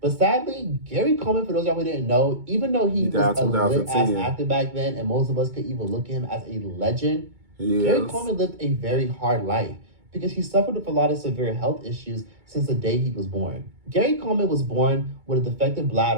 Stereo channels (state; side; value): late; left; 2.2 ms